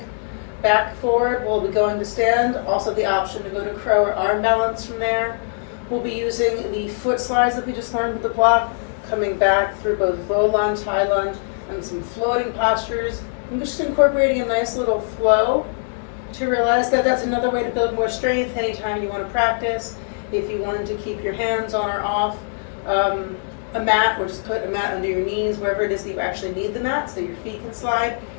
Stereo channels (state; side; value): silent; right; digital silence